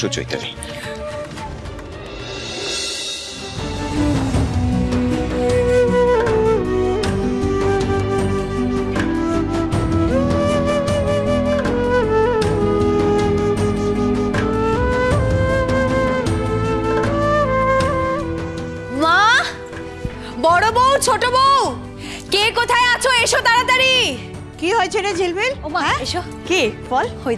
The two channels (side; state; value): both; identical; correlation 1.00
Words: চৈতালি। মা, বড় বউ, ছোট বউ, কে কোথায় আছো? এসো তাড়াতাড়ি। কি হয়েছে রে ঝিলমিল? ও মা, এসো। কি বল? ওই